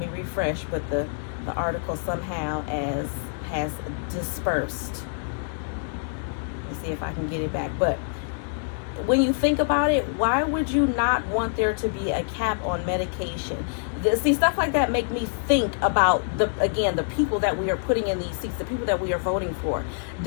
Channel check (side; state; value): right; silent; digital silence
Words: refresh, but the article somehow has dispersed. Let's see if I can get it back. But when you think about it, why would you not want there to be a cap on medication? See, stuff like that make me think about the people that we are putting in these seats, the people that we are voting for.